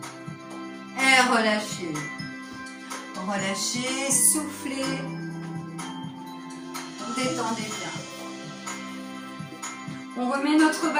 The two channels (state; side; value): identical; both; correlation 1.00